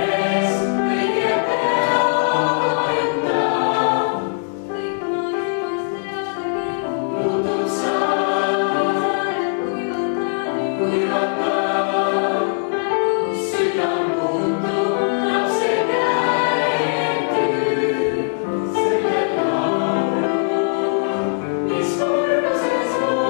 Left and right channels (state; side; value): silent; right; 66 dB below the other